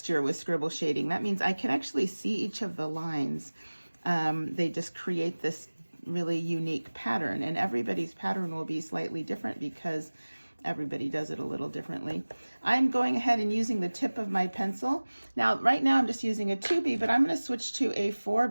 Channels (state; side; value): inverted; both; correlation -1.00